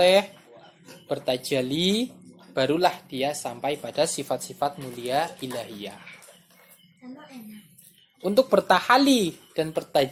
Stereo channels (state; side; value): identical; both; correlation 1.00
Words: bertajali, barulah dia sampai pada sifat-sifat mulia ilahiyah. Untuk bertahali dan